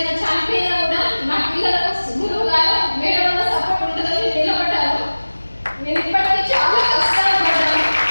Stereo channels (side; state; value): both; inverted; correlation -1.00